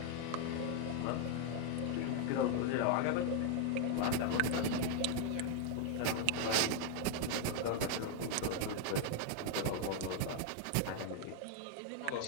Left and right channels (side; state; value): both; different; correlation 0.00